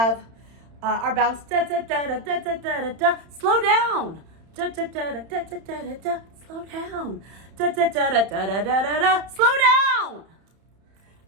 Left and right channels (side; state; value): left; late; 31 ms